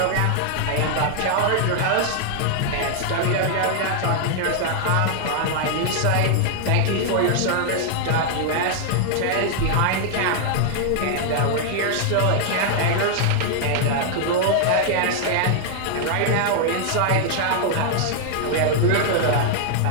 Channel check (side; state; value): both; different; correlation 0.00